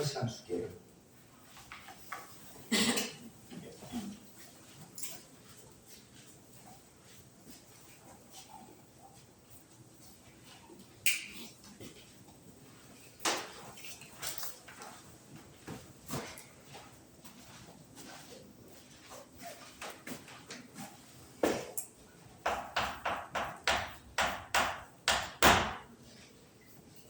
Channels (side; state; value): both; identical; correlation 1.00